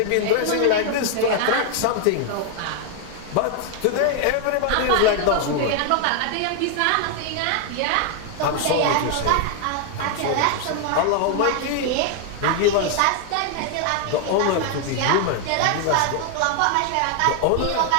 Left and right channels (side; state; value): both; different; correlation 0.00